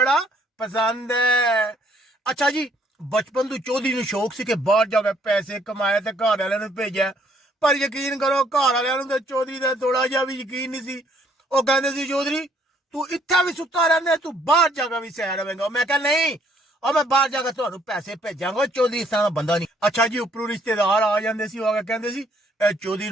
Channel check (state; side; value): normal; both; correlation 0.65